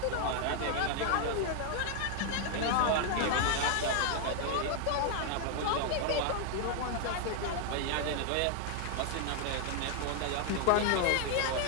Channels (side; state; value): both; different; correlation 0.00